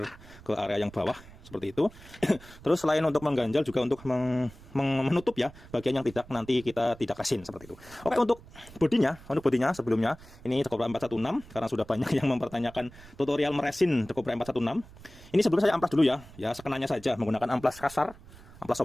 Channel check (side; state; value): right; noise; rumble, 20 dB below the sound